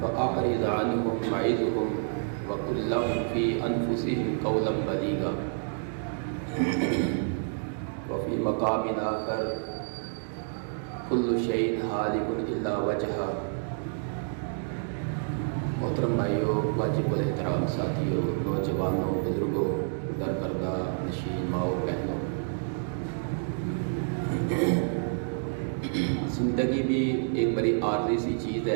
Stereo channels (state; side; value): silent; left; digital silence